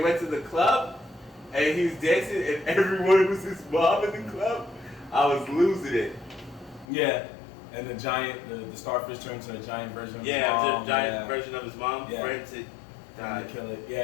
to the club and he was dancing and everyone was his mom in the club. I was losing it. Yeah. And the giant, the starfish turned to a giant version of his Yeah, mom. the giant version of his mom Yeah. for him to Trying to kill it.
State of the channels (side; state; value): right; drops out; at 6.9 s